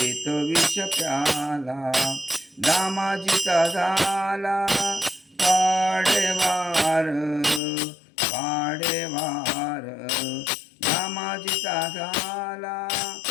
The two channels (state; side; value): drops out; right; at 7.6 s